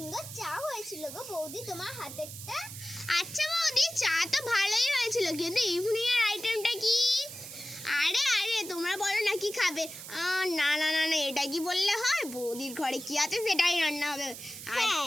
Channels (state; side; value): noise; right; hiss, 11 dB below the sound